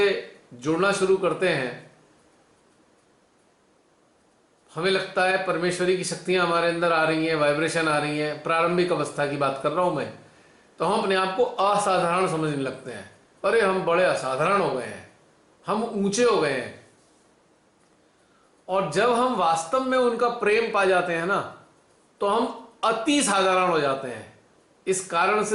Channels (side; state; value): both; identical; correlation 1.00